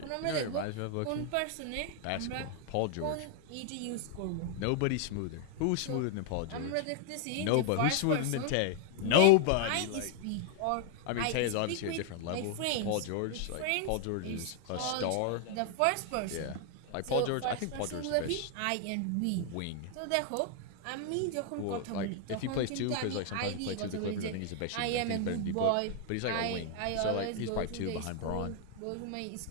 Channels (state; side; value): different; both; correlation 0.00